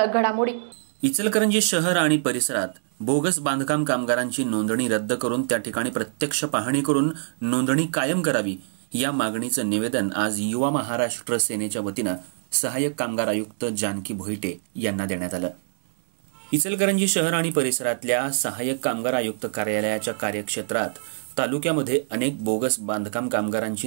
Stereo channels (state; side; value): silent; left; digital silence